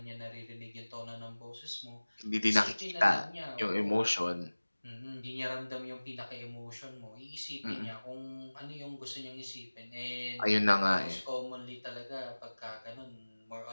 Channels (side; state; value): both; inverted; correlation -1.00